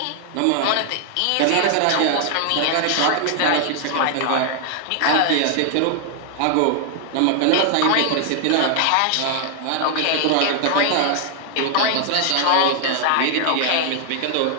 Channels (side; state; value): both; different; correlation 0.00